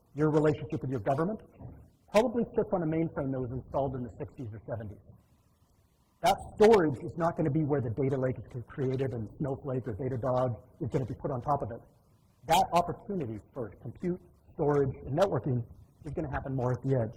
your relationship with your government probably sits on a mainframe that was installed in the 60s or 70s. That storage is not going to be where the data lake is created and Snowflake or Datadog is going to be put on top of it. That opportunity for compute, storage, and networking is going to happen more at the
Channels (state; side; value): identical; both; correlation 1.00